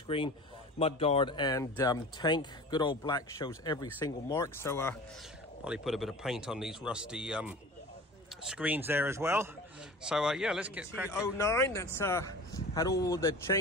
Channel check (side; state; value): both; normal; correlation 0.39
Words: mudguard and tank. Good old black shows every single mark. So probably put a bit of paint on these rusty screens there as well. So yeah, let's get cracking. 09, that's had all the